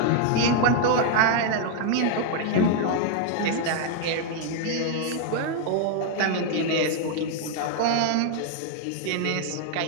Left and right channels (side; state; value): both; different; correlation 0.00